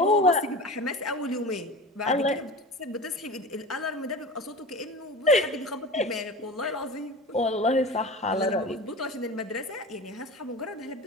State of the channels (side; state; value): both; normal; correlation 0.32